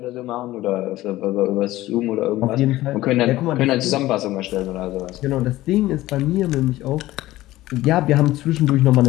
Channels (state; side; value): quieter; right; 16.5 dB